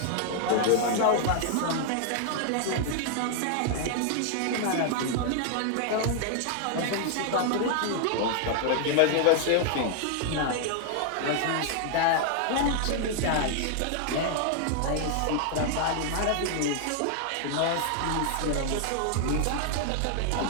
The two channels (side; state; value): both; different; correlation 0.00